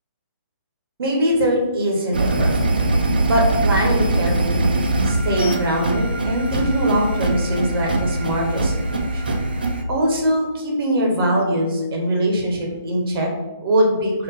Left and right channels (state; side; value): inverted; both; correlation -0.68